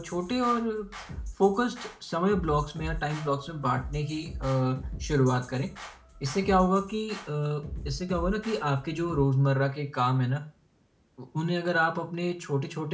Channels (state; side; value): identical; both; correlation 1.00